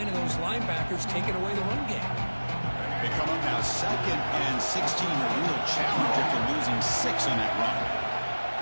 and those linebackers taking away the run game. They come up now 2nd and 16, a real challenge after losing 6 on that run.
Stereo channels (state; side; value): inverted; both; correlation -1.00